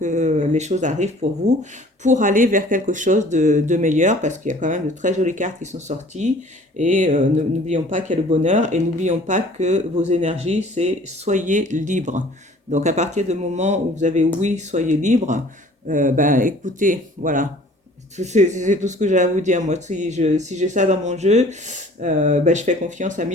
les choses arrivent pour vous, pour aller vers quelque chose de meilleur, parce qu'il y a quand même de très jolies cartes qui sont sorties. Et n'oublions pas qu'il y a le bonheur, et n'oublions pas que vos énergies, c'est soyez libre. Donc à partir du moment où vous avez oui, soyez libre, ben écoutez, voilà, c'est tout ce que j'ai à vous dire. Moi, si j'ai ça dans mon jeu, ben, je fais confiance à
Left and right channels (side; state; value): both; normal; correlation 0.51